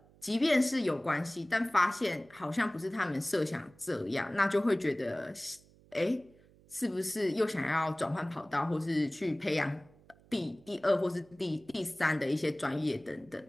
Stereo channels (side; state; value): right; noise; hum, 27 dB below the sound